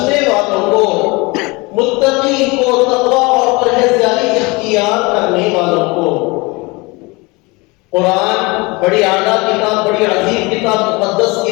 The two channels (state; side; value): quieter; right; 25.5 dB